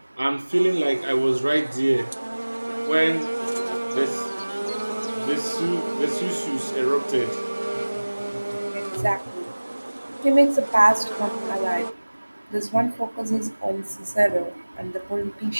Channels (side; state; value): both; inverted; correlation -1.00